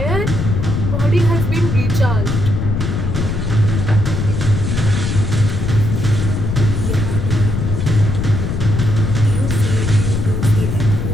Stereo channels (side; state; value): left; noise; rumble, 1 dB below the sound